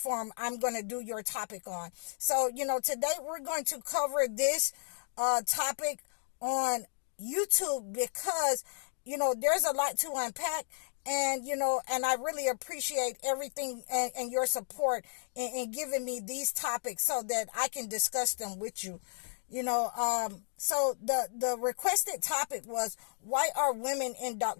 I'm going to do your topic on. So, today we're going to cover this topic on YouTube because there's a lot to unpack, and I really appreciate everything and your support in giving me these topics so that I can discuss them with you. So the requested topic was, why are women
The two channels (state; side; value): silent; right; digital silence